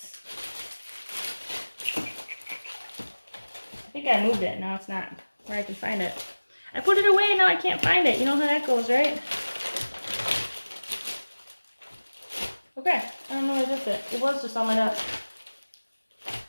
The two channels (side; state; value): both; inverted; correlation -1.00